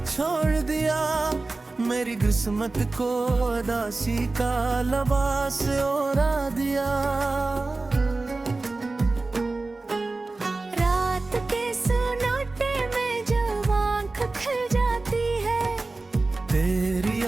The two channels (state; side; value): quieter; left; 3.4 dB